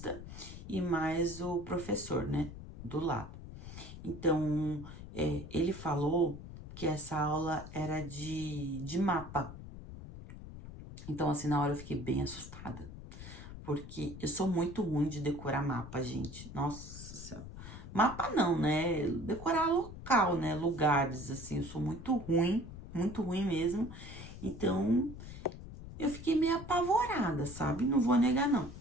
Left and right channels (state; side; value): noise; left; rumble, 12 dB below the sound